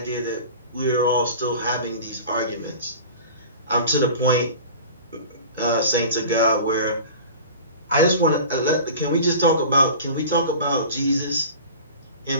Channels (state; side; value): inverted; both; correlation -0.38